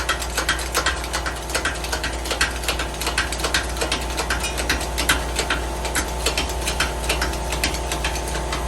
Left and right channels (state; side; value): identical; both; correlation 1.00